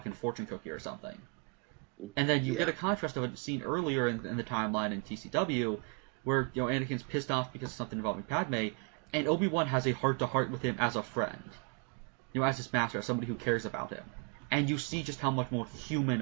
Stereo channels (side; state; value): left; quieter; 35.1 dB